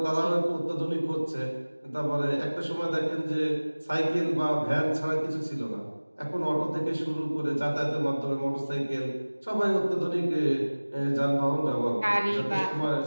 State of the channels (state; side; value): inverted; both; correlation -1.00